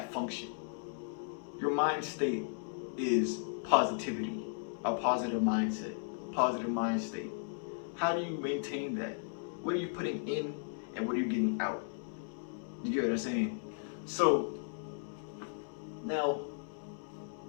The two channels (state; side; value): silent; right; digital silence